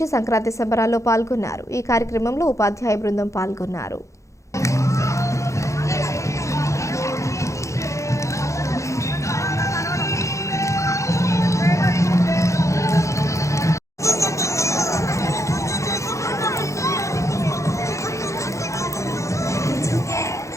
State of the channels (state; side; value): late; right; 0.15 ms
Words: సంక్రాంతి సంబరాల్లో పాల్గొన్నారు. ఈ కార్యక్రమంలో ఉపాధ్యాయ బృందం పాల్గొన్నారు.